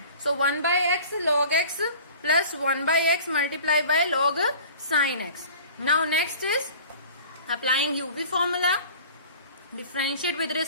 So 1 by x log x plus 1 by x multiplied by log sin x. Now next is applying uv formula, differentiate with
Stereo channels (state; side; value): inverted; both; correlation -0.44